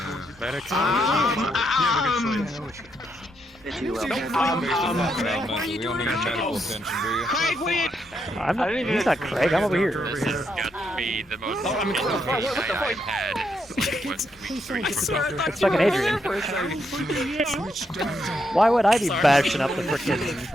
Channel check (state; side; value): normal; both; correlation 0.79